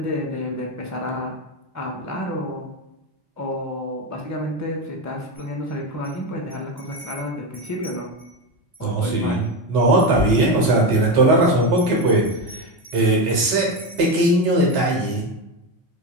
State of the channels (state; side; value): late; left; 4.1 ms